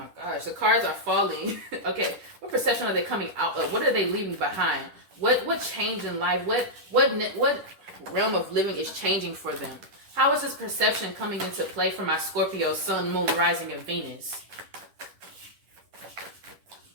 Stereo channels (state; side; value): late; left; 10 ms